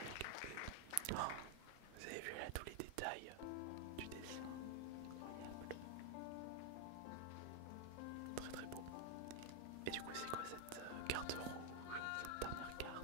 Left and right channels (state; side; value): different; both; correlation 0.00